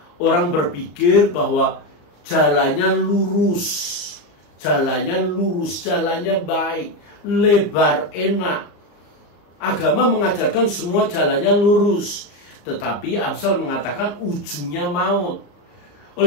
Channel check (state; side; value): late; right; 34 ms